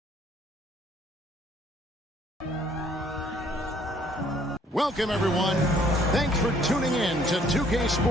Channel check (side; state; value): both; normal; correlation 0.61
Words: Welcome, everyone. Thanks for tuning in to 2K